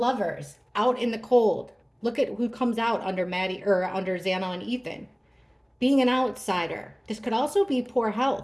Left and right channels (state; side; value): identical; both; correlation 1.00